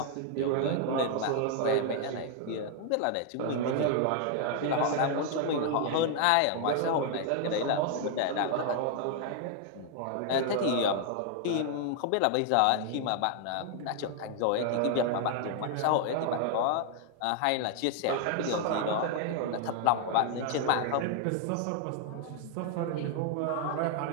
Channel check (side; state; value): both; different; correlation 0.00